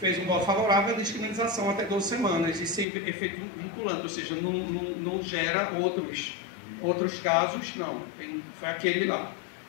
um voto favorável à descriminalização até 12 semanas, e sem efeito vinculante, ou seja, não gera outros casos, não, foi aquele lá.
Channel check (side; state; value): right; drops out; at 2.9 s